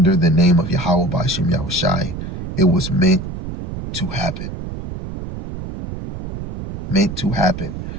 the name of Yahweh Ba'ashem Yahushai, it was meant to happen. Meant to happen.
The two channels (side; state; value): right; noise; rumble, 7 dB below the sound